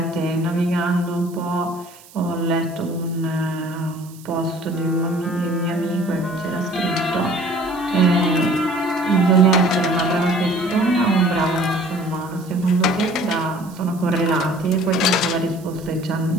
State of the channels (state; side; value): noise; right; hiss, 23 dB below the sound